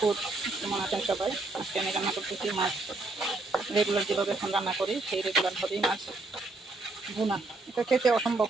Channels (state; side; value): quieter; left; 3.2 dB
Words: কেমন আছেন সবাই? আজকে আমি রান্না করতেছি মাছ। রেগুলার যেভাবে এখন রান্না করি সেই রেগুলারভাবেই মাছ ভুনা। এটা খেতে অসম্ভব